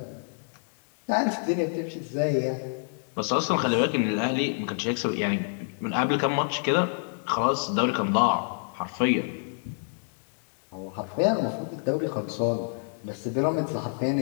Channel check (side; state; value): right; silent; digital silence